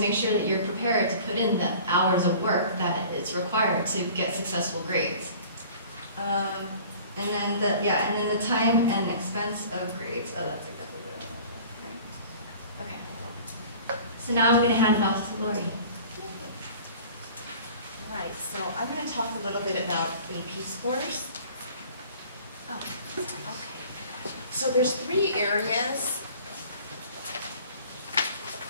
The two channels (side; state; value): both; inverted; correlation -0.46